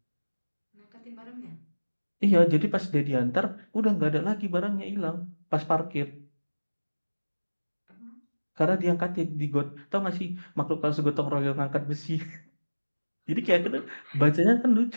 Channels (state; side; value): inverted; both; correlation -1.00